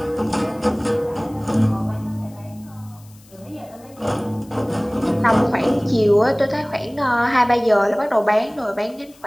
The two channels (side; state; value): left; noise; hiss, 27 dB below the sound